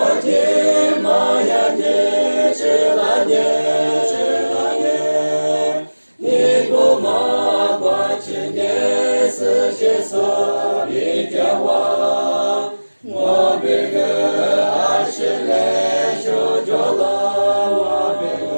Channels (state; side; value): inverted; both; correlation -1.00